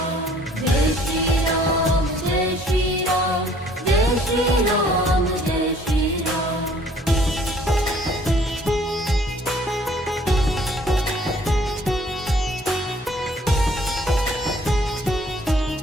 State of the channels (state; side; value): normal; both; correlation 0.58